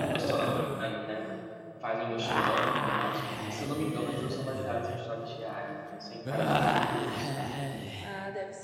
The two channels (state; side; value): identical; both; correlation 1.00